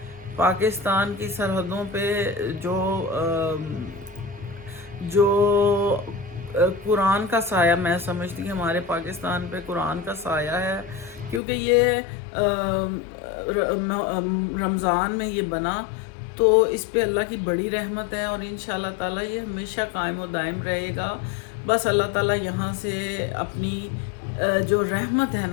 پاکستان کی سرحدوں پہ جو قرآن کا سایہ، میں سمجھتی ہوں ہمارے پاکستان پہ قرآن کا سایہ ہے، کیونکہ یہ رمضان میں یہ بنا تو اس پہ اللہ کی بڑی رحمت ہے، اور انشاءاللہ تعالیٰ یہ ہمیشہ قائم و دائم رہے گا۔ بس اللہ تعالیٰ یہاں سے اپنی جو رحمت ہے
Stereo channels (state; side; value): drops out; right; at 11.4 s